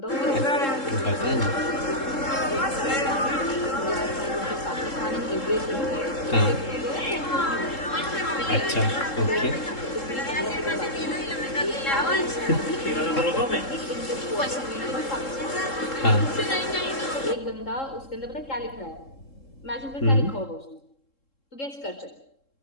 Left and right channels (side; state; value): right; late; 3.7 ms